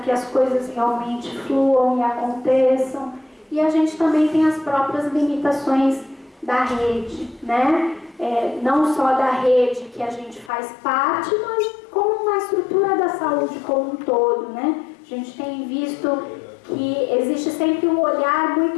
as coisas realmente fluam e aconteçam. E a gente também tem as próprias limitações da rede, né? Não só da rede que a gente faz parte, mas como uma estrutura da saúde como um todo, né? A gente tem visto que existe sempre um olhar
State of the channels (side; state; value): right; drops out; at 10.5 s